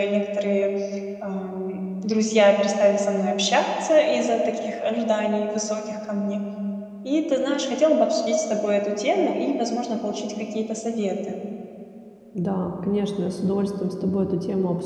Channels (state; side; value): identical; both; correlation 1.00